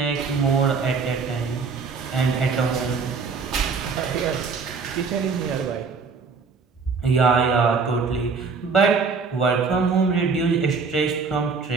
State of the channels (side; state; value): left; quieter; 5.0 dB